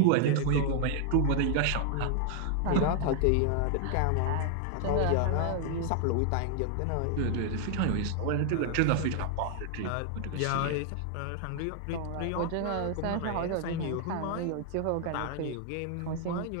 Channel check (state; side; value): different; both; correlation 0.00